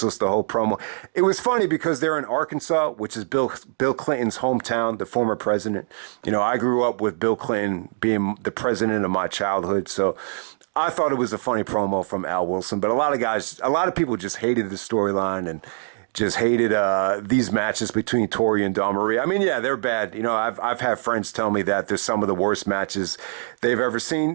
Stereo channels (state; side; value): silent; left; digital silence